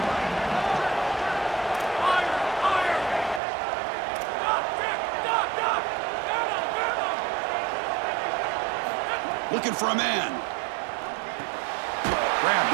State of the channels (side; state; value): left; drops out; at 3.4 s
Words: Looking for a man. Grab